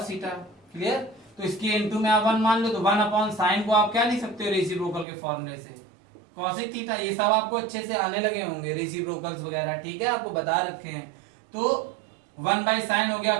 थीटा। क्लियर। तो इसकी इंटू में आप 1 मान लो, तो 1 अपॉन साइन को आप क्या लिख सकते हो रेसिप्रोकल के फॉर्मूले से कॉसिक थीटा। ये सब आपको अच्छे से आने लगे होंगे रेसिप्रोकल्स वगैरह, ठीक है, आपको बता रखे हैं। तो 1 बाई साइन हो गया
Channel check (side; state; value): left; drops out; at 5.1 s